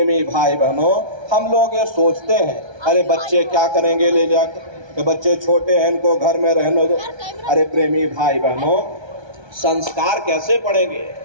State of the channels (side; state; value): left; late; 1.3 ms